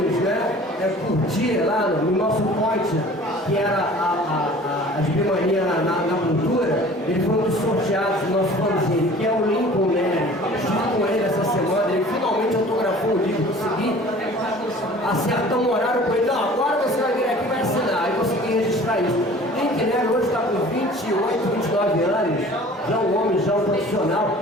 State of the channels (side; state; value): both; normal; correlation 0.46